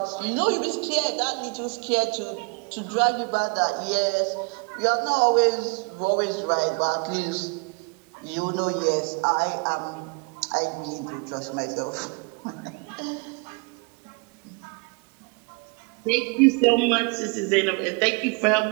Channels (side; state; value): left; quieter; 32.7 dB